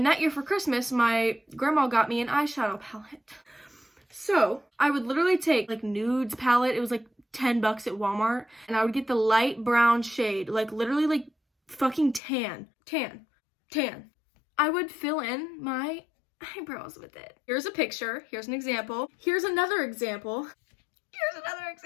that year for Christmas, my grandma got me an eyeshadow palette. So I would literally take like nudes palette. It was like $10 at Walmart. And I would get the light brown shade, like literally like fucking tan. I would fill in my eyebrows with it. Here's a picture. Here's an example. Here's another example. Here's another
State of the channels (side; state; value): right; drops out; at 12.2 s